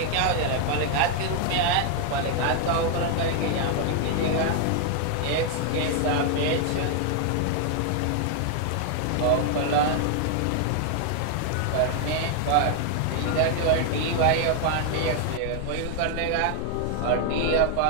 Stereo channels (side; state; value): both; different; correlation 0.00